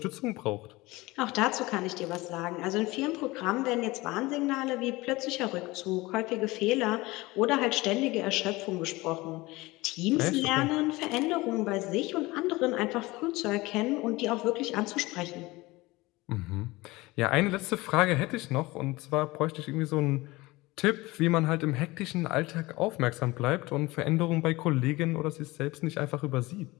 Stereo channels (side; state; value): right; quieter; 21.1 dB